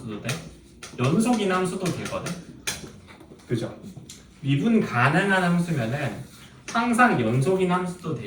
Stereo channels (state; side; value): identical; both; correlation 1.00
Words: 돼? 연속인 함수도 되거든. 그죠? 미분 가능한 함수면은 항상 연속인 함수도